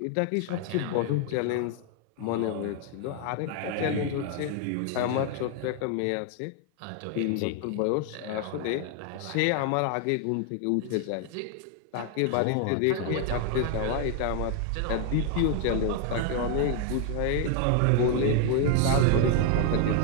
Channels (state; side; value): different; both; correlation 0.00